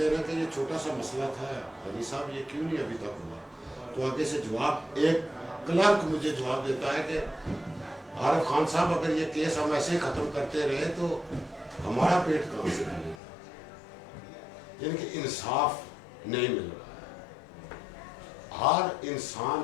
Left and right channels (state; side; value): drops out; right; at 13.2 s